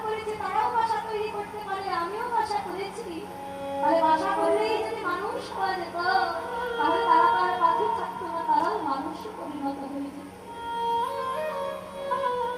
করেছে, তারাও বাসা তৈরি করতে পারে, আমিও বাসা করেছি। তাহলে বাসা করলেই যদি মানুষ হওয়া যেত, তাহলে তারা তার পাখি থাকতো না, তারাও মানুষে পরিণত হয়ে যেত।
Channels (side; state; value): both; identical; correlation 1.00